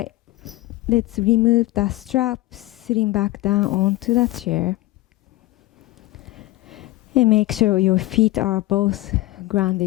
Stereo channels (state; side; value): quieter; right; 18.4 dB